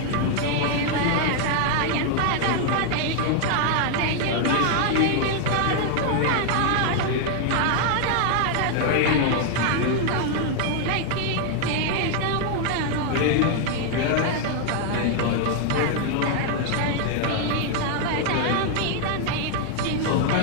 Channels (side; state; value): both; different; correlation 0.00